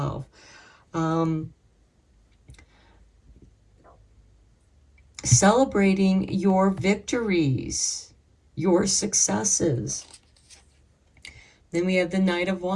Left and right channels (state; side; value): identical; both; correlation 1.00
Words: Celebrating your victories, your successes. Then we have the Knight of